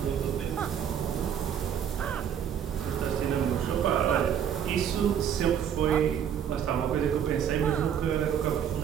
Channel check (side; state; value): left; quieter; 8.7 dB